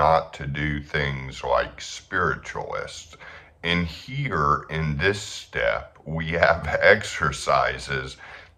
to do things like spiritualists. And here in this step, we have exercises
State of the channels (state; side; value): identical; both; correlation 1.00